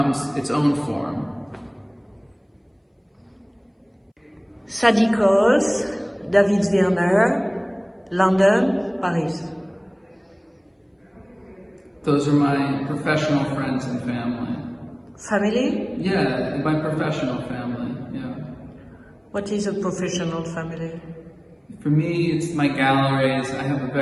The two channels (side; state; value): both; identical; correlation 1.00